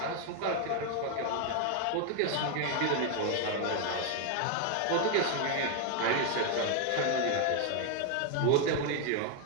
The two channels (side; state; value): both; different; correlation 0.00